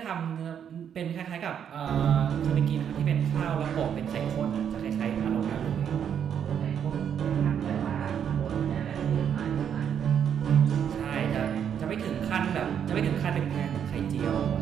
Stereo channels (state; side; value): quieter; left; 8.5 dB